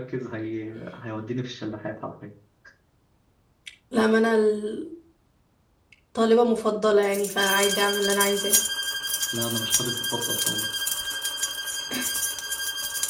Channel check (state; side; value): identical; both; correlation 1.00